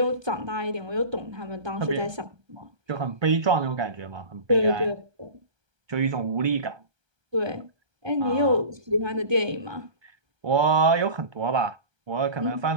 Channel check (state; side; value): late; left; 1.3 ms